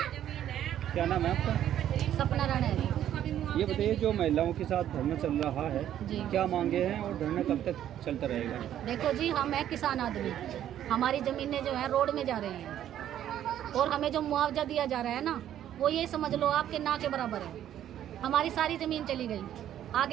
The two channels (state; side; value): quieter; left; 11.1 dB